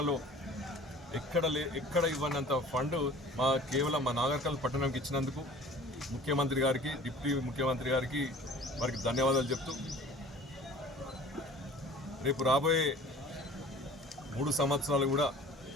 ఎక్కడ ఇవ్వనంత ఫండ్ కేవలం మా నాగర్కల్ పట్టణంకి ఇచ్చినందుకు ముఖ్యమంత్రి గారికి, డిప్యూటీ ముఖ్యమంత్రి గారికి వారికి ధన్యవాదాలు చెప్తూ రేపు రాబోయే 3 సంవత్సరాలు కూడా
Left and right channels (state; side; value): normal; both; correlation 0.46